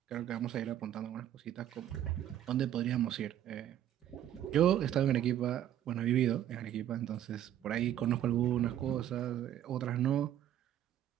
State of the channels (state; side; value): quieter; left; 11.3 dB